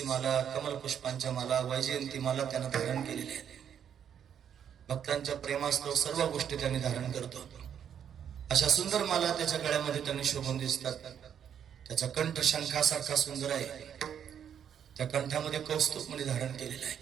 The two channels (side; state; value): left; quieter; 8.7 dB